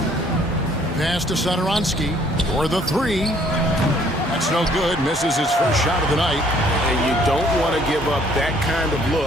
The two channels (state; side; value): normal; both; correlation 0.61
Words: Pass to Sadoronsky for the three. That's no good. Misses his first shot of the night. And you don't want to give up that kind of